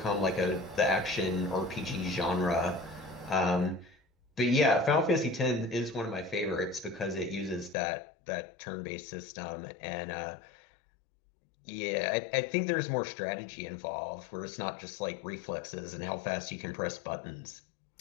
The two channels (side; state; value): right; drops out; at 7.8 s